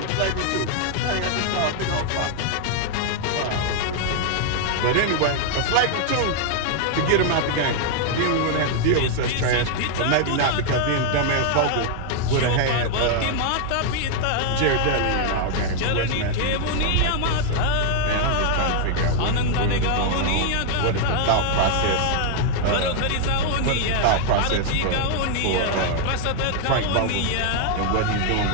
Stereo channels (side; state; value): both; different; correlation 0.00